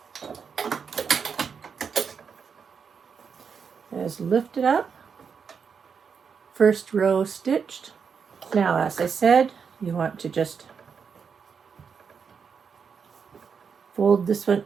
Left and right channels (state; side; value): quieter; left; 6.3 dB